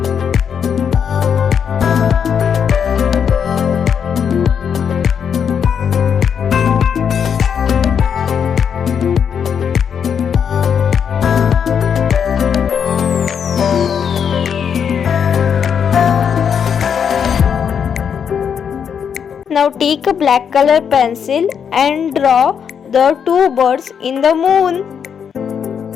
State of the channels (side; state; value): right; quieter; 7.5 dB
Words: Now take a black color pencil and draw the two birds in the moon.